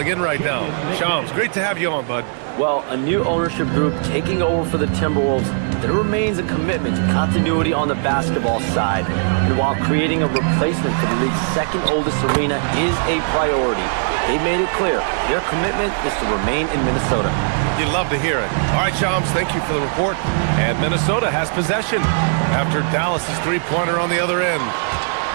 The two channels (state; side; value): silent; left; digital silence